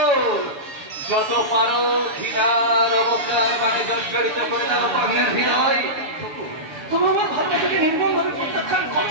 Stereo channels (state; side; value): late; left; 7.0 ms